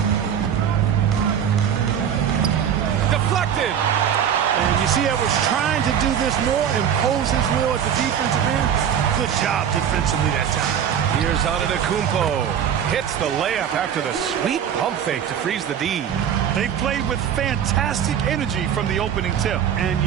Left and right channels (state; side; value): quieter; left; 8.7 dB